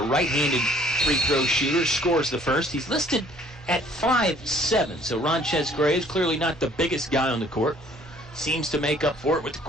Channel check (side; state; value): both; normal; correlation 0.58